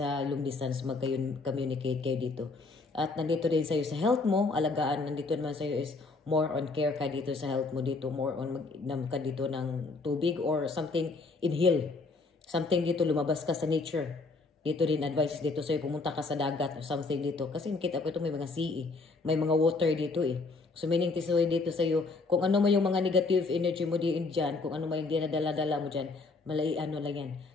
long distance, mag-communicate kayo dito. At nandito din sa iyo sa health mo, alagaan, nandito naman sa iyo is more on care ka dito sa health mo dito, more on mag ka dito ng tubig or something, inhale. Something dito, lumabas ka sa nature. Dito din advice dito sa'yo, pumunta ka sa dagat or something dito. Kasi nakita ko ito may mga sea may mga water dito eh. So meaning tisoy dito sa'yo, kung ano mo yung mga negative energy mo dyan, kung ano mo yung dinadala-dala mo dyan, ano lang yan.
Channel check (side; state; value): right; quieter; 3.8 dB